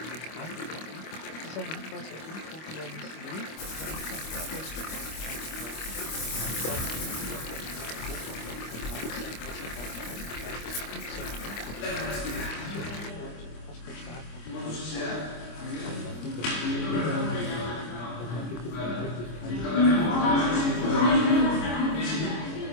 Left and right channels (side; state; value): right; late; 25 ms